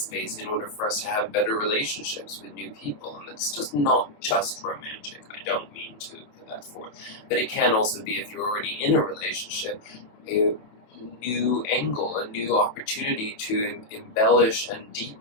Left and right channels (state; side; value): late; right; 28 ms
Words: in order for us to have better relationships with new people. And it's just not just romantic. I don't mean to put that forth. But it can also be, if you're already in a relationship, a new angle, a new opportunity to embellish and